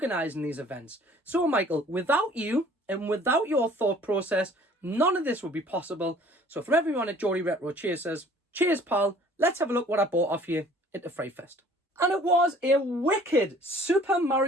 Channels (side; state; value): both; normal; correlation 0.53